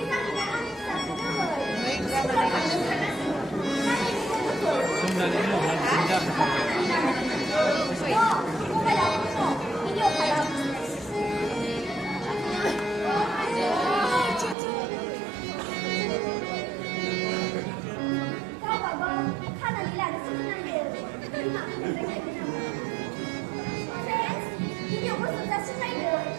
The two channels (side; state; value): left; drops out; at 14.6 s